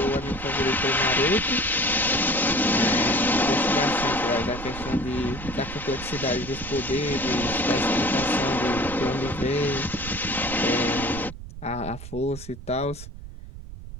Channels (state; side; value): noise; right; rumble, 12 dB below the sound